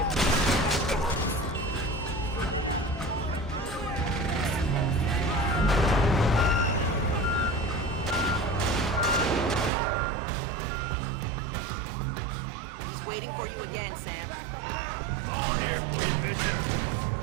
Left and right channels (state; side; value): drops out; left; at 9.7 s